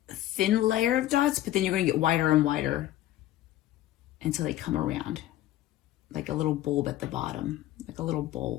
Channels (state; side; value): quieter; right; 14.1 dB